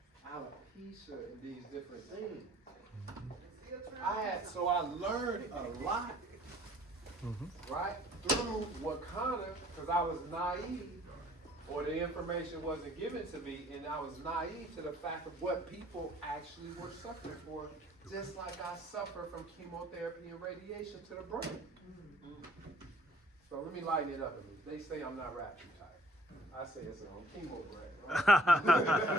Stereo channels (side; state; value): both; normal; correlation 0.57